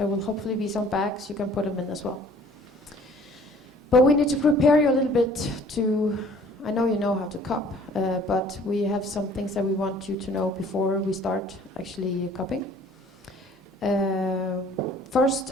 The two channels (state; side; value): normal; both; correlation 0.53